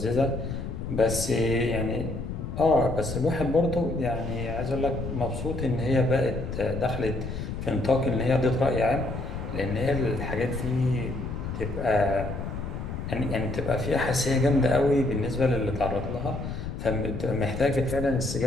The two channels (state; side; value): noise; left; rumble, 6 dB below the sound